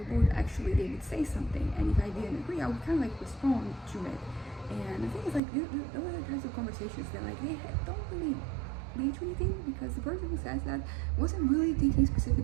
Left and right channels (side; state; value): left; drops out; at 5.4 s